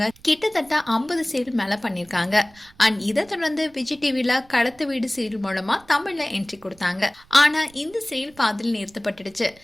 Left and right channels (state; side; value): noise; right; rumble, 27 dB below the sound